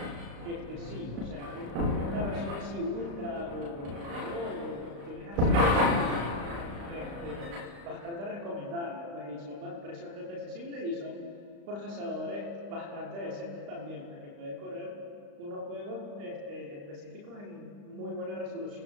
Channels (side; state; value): left; late; 35 ms